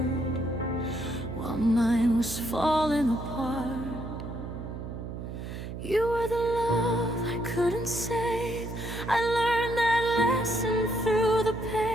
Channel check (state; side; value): noise; right; hum, 8 dB below the sound